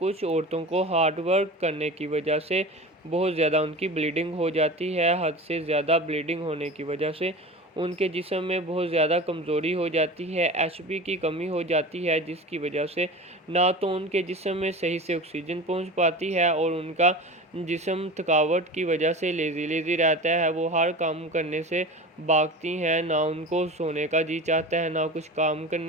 औरतों को हार्ड वर्क करने की वजह से बहुत ज़्यादा उनकी ब्लीडिंग हो जाती है, हद से ज़्यादा ब्लीडिंग होने की वजह से उनके जिस्म में बहुत ज़्यादा कमज़ोरी हो जाती है, एचबी की कमी हो जाती है, जिसकी वजह से ना तो उनके जिस्म में सही से ऑक्सीजन पहुंच पाती है और उनका जिस्म थकावट की वजह से लेज़ी रहता है, वो हर काम करने से भागती हैं, ना उनको सोने का जी चाहता है, ना कुछ काम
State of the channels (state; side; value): normal; both; correlation 0.32